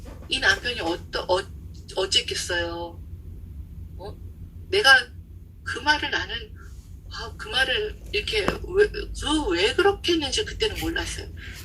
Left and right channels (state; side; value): identical; both; correlation 1.00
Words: 이 남편이 어쨌겠어요. 내가 그 말을 나는 그 말을 이렇게 왜 그렇게 했는지 그때는 몰랐어요.